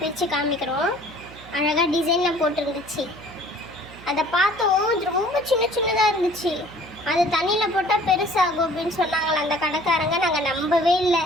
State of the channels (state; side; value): noise; right; hum, 19 dB below the sound